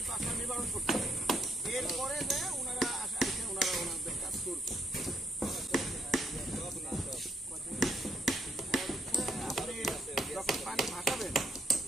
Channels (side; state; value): both; normal; correlation 0.70